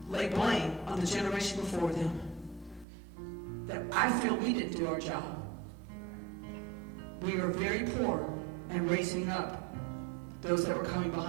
lay blame on the generation before them. That I feel we didn't do our job. We were very poor in raising up those that were coming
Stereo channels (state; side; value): drops out; left; at 2.9 s